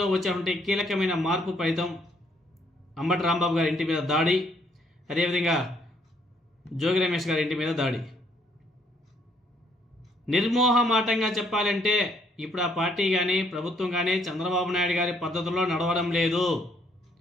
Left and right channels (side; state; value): both; normal; correlation 0.68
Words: వచ్చేటువంటి కీలకమైన మార్పు ఫలితం అంబటి రాంబాబు గారి ఇంటి మీద దాడి, అదేవిధంగా జోగి రమేష్ గారి ఇంటి మీద దాడి. నిర్మోహమాటంగా చెప్పాలంటే ఇప్పుడు ఆ పార్టీ కానీ ప్రభుత్వం కానీ చంద్రబాబు నాయుడు గారి పద్ధతుల్లో నడవడం లేదు.